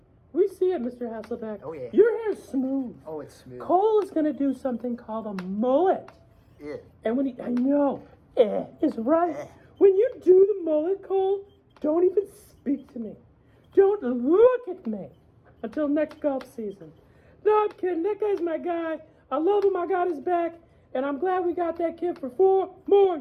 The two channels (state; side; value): identical; both; correlation 1.00